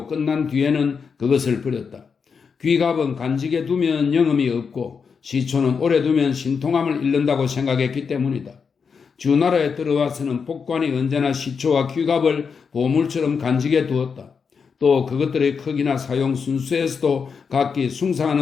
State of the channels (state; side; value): quieter; right; 5.9 dB